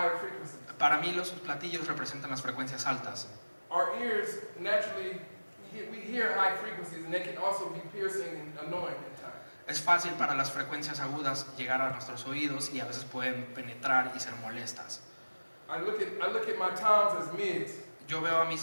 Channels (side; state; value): both; inverted; correlation -1.00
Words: frequencies. Para mí los platillos representan las frecuencias altas. Our ears naturally, we hear high frequencies, and they can also be piercing and annoying at times. Es fácil para las frecuencias agudas llegar a nuestros oídos y a veces pueden penetrar y ser molestas. I look at my toms as mids, Yo veo a